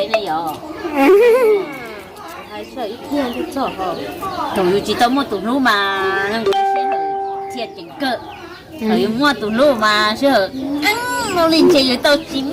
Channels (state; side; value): identical; both; correlation 1.00